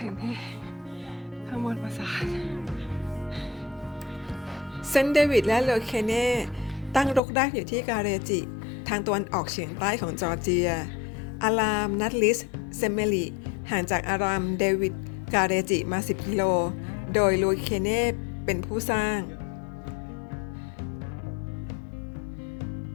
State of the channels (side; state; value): right; drops out; at 7.2 s